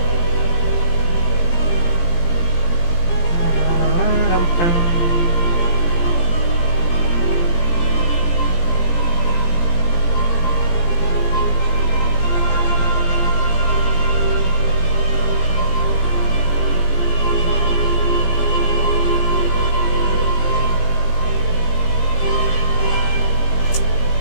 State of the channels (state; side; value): late; right; 17 ms